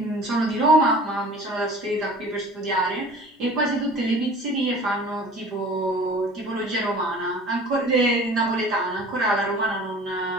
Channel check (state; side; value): normal; both; correlation 0.45